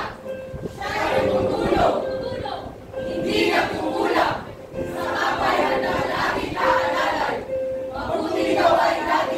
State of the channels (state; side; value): identical; both; correlation 1.00